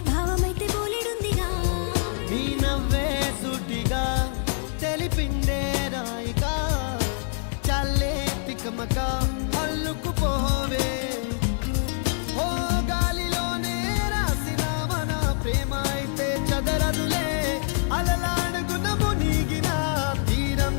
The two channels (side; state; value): right; silent; 61 dB below the other